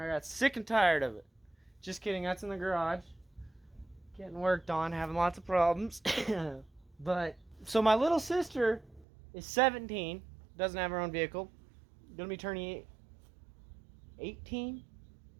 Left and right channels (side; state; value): left; drops out; at 9.1 s